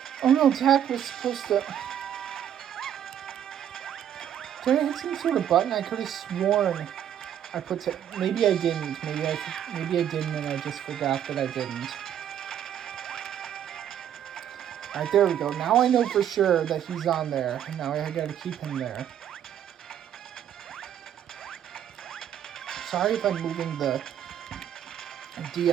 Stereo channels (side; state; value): left; quieter; 9.9 dB